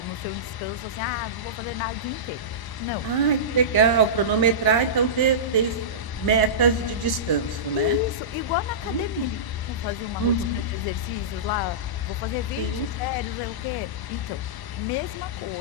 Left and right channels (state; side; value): late; right; 1.0 ms